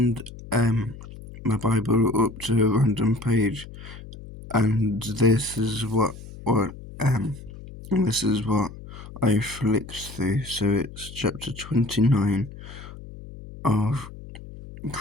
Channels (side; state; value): left; noise; hum, 15 dB below the sound